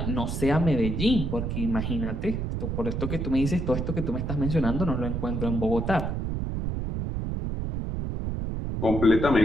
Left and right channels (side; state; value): right; noise; rumble, 2 dB below the sound